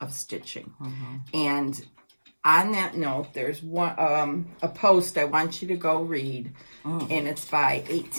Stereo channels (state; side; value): inverted; both; correlation -1.00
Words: of stitching. And on that note, there's one a post I want you to go read. And it's by